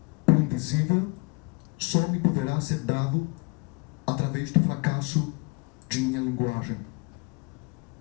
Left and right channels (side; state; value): right; quieter; 30.2 dB